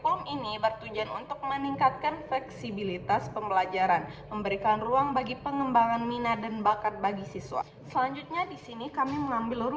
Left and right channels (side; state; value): both; identical; correlation 1.00